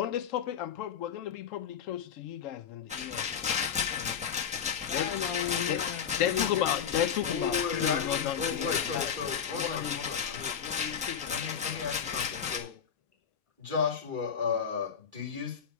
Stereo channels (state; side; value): quieter; right; 7.7 dB